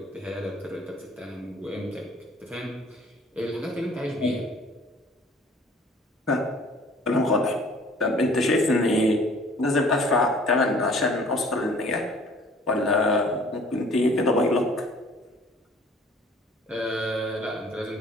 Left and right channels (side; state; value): both; normal; correlation 0.53